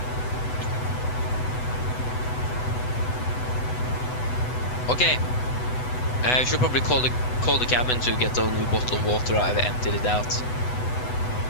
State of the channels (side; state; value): right; late; 8.0 ms